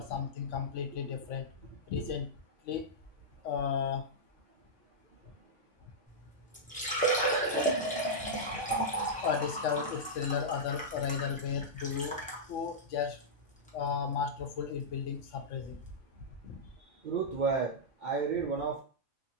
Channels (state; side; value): normal; both; correlation -0.10